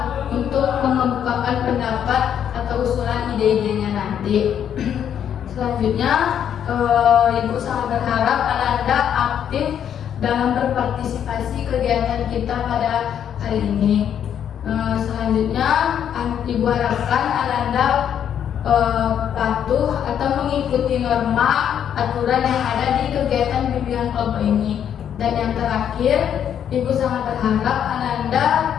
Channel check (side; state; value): right; quieter; 9.1 dB